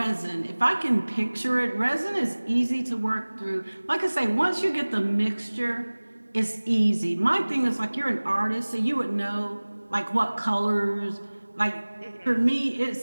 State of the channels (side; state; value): both; inverted; correlation -1.00